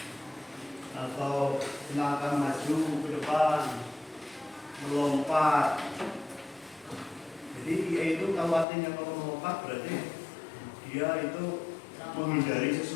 atau melangkah maju ke depan, melompat. Jadi dia itu kalau artinya kalau melompat berarti dia itu menghindari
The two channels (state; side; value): drops out; right; at 8.7 s